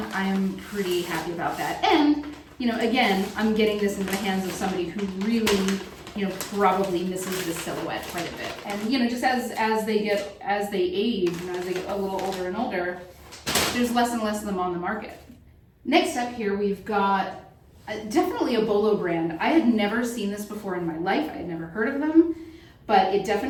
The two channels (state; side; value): identical; both; correlation 1.00